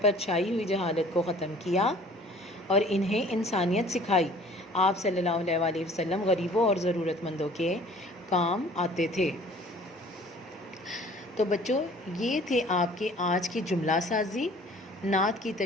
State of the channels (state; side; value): normal; both; correlation 0.51